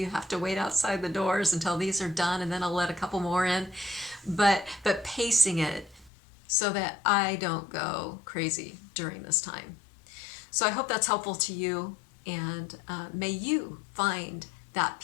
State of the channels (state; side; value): drops out; right; at 6.1 s